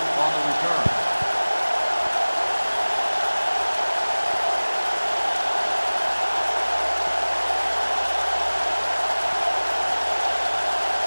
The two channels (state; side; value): inverted; both; correlation -1.00